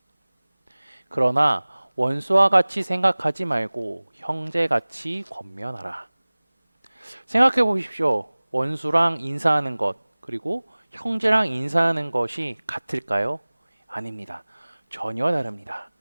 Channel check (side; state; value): both; inverted; correlation -1.00